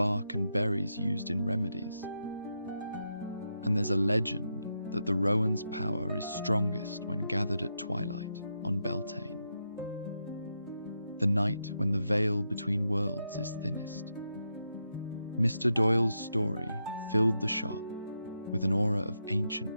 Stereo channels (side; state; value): both; inverted; correlation -0.84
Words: and berries used in remedies. And there's a legend that the rowan's power is strongest when gathered at twilight on Beltane, the night when the veil between worlds is thinnest. Mr. Doyle's story filled the shop with an aura of ancient